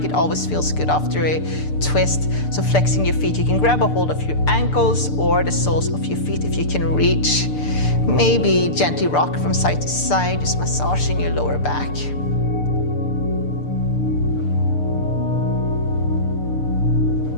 It always feels good after a twist. So flexing your feet, you can grab a hold of your ankles or the soles of your feet if you can reach. Maybe gently rock from side to side, just massaging your lower back.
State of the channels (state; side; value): late; right; 6.8 ms